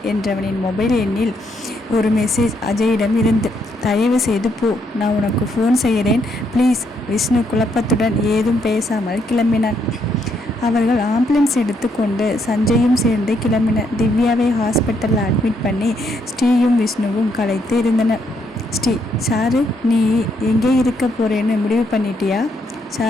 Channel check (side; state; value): both; normal; correlation 0.74